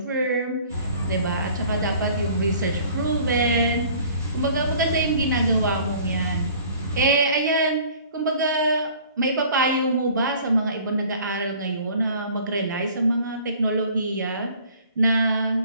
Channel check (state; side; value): inverted; both; correlation -0.51